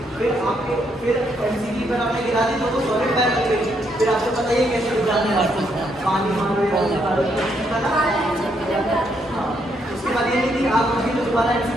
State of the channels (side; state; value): both; normal; correlation 0.75